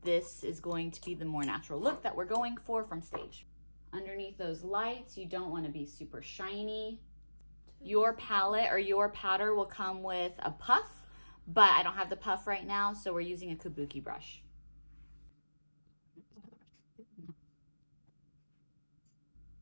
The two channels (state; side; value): inverted; both; correlation -1.00